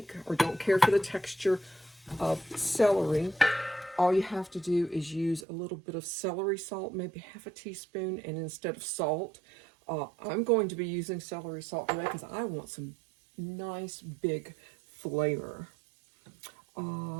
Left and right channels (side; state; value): left; drops out; at 5.5 s